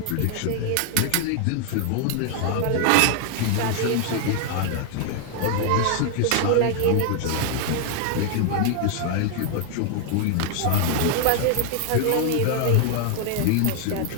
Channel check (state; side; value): different; both; correlation 0.00